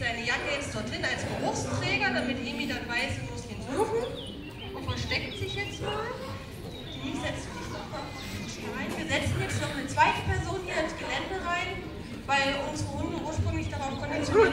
Jacke jetzt dorthin als Geruchsträger, damit Emi dann weiß, sie muss ihn suchen. Und versteckt sich jetzt mal. Die setzt sich noch mal rein. Wir setzen jetzt noch eine zweite Person hier ins Gelände rein, weil unsere Hunde ursprünglich darauf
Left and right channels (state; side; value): identical; both; correlation 1.00